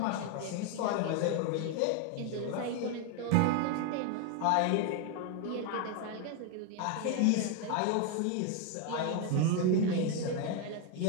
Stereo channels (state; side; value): different; both; correlation 0.01